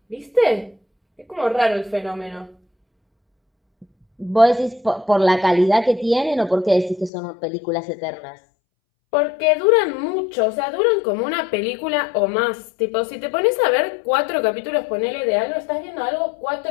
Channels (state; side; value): drops out; right; at 7.1 s